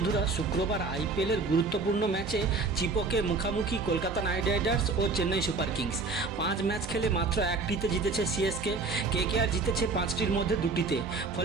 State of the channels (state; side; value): quieter; left; 4.0 dB